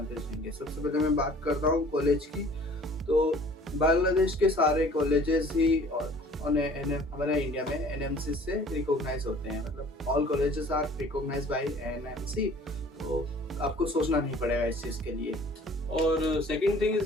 रहेंगे। सबसे पहले मैं बात करता हूँ कॉलेज की। तो बांग्लादेश के सारे कॉलेजेस ही और हमारे इंडिया में एनएमसी से रिकॉग्नाइज होते हैं, मतलब all colleges are recognised by NMC. तो आपको सोचना नहीं पड़ेगा इस चीज़ के लिए। और सेकंड थिंग इज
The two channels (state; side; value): normal; both; correlation 0.50